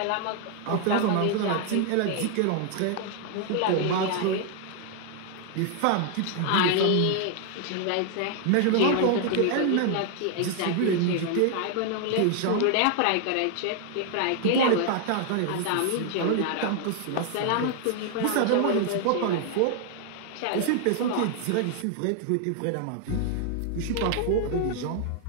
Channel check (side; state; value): both; different; correlation 0.00